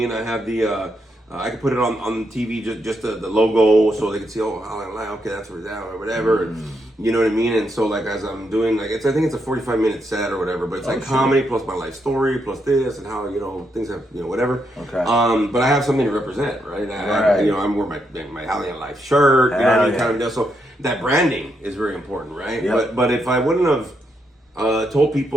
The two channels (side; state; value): both; normal; correlation 0.80